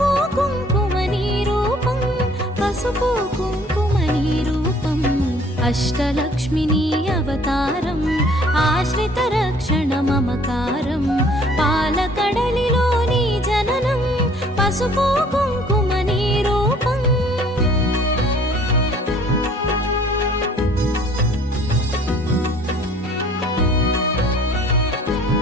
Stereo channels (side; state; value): both; normal; correlation 0.56